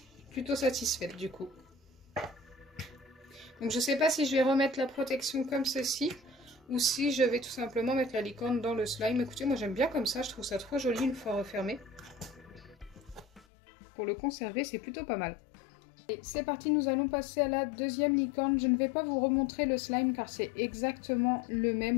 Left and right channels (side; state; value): right; drops out; at 13.4 s